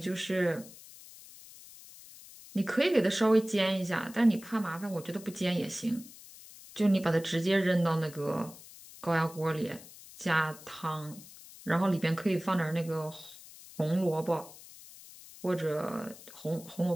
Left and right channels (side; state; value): left; noise; hiss, 18 dB below the sound